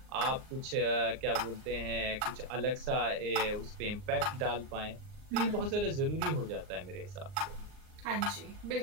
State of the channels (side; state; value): left; late; 39 ms